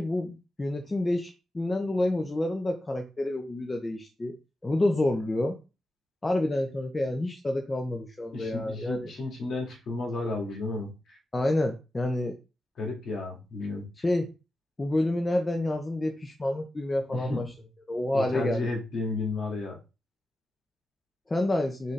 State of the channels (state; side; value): normal; both; correlation 0.92